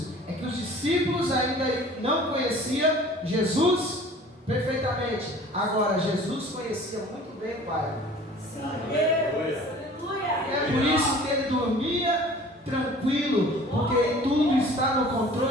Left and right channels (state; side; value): normal; both; correlation 0.47